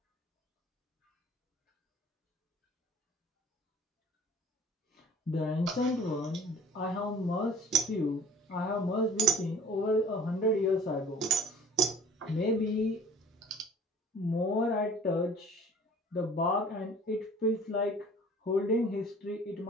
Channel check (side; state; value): both; normal; correlation 0.48